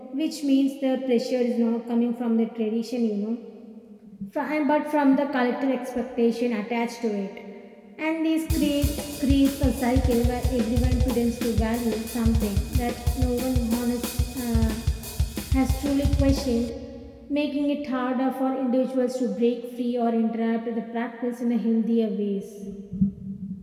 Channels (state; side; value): identical; both; correlation 1.00